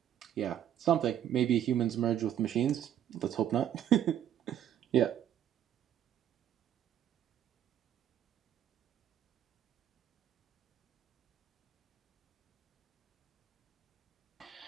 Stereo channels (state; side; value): quieter; left; 10.4 dB